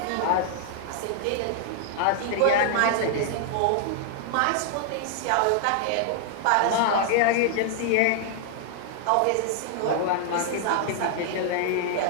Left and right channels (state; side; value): different; both; correlation 0.00